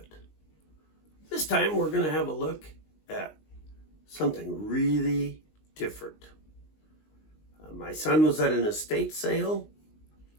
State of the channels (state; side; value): late; right; 19 ms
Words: This time we're going to have a look at something really different. My son was at an estate sale,